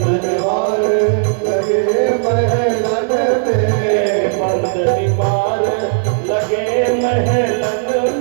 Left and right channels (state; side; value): silent; left; 67 dB below the other